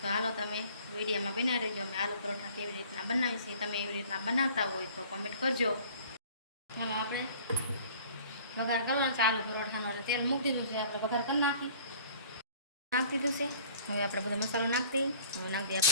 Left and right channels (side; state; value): both; inverted; correlation -0.50